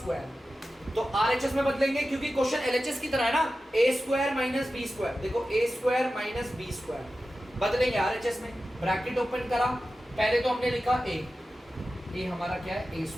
तो आरएचएस में बदलेंगे क्योंकि क्वेश्चन एलएचएस की तरह है ना, a square minus b square, देखो ए स्क्वायर माइनस बी स्क्वायर बदलेंगे आरएचएस में, ब्रैकेट ओपन करा, पहले तो हमने लिखा ए हमारा क्या है ए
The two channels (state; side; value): normal; both; correlation 0.93